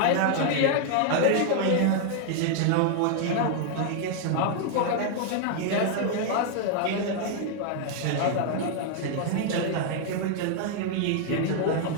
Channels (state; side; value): different; both; correlation 0.00